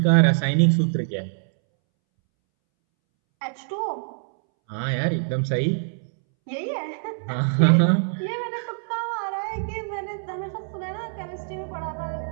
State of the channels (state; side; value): silent; left; 62 dB below the other